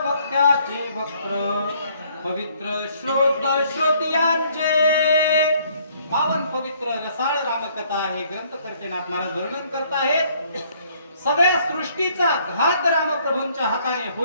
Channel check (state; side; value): inverted; both; correlation -0.64